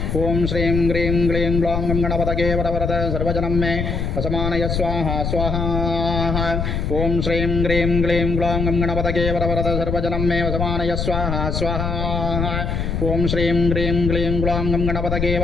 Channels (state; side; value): noise; left; rumble, 2 dB below the sound